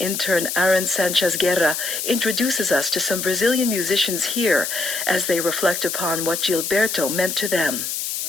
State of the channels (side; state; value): left; noise; hiss, 3 dB below the sound